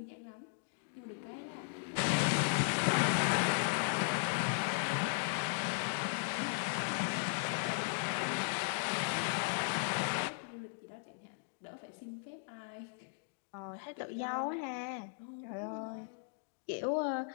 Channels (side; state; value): right; silent; digital silence